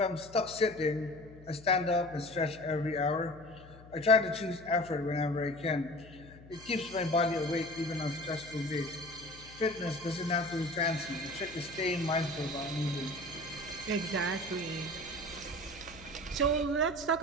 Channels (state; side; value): noise; left; hum, 20 dB below the sound